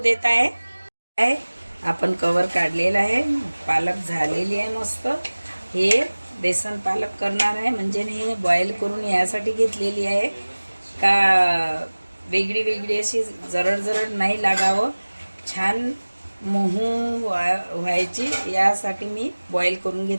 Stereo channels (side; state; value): both; inverted; correlation -1.00